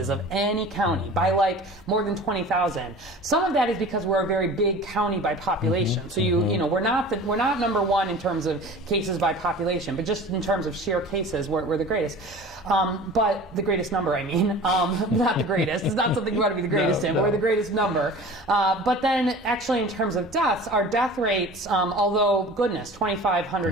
of any county by like more than 20,000. Some of that is because we're a very big county by population. So we're not number 1 in terms of cases by population, but just in terms of sheer cases, we're the greatest. But the greatest number, I mean, not the greatest. It's not something you want to be the greatest in, but we're the greatest number. But then actually in terms of deaths, our death rates, although goodness,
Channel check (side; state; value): both; normal; correlation 0.40